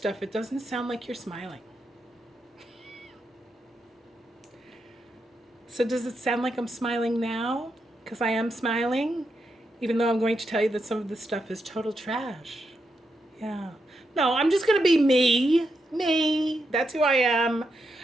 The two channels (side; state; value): both; normal; correlation 0.83